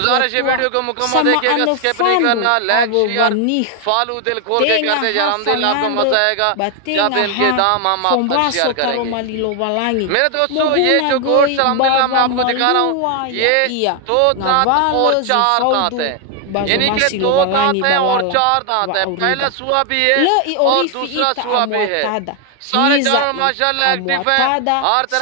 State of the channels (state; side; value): different; both; correlation 0.00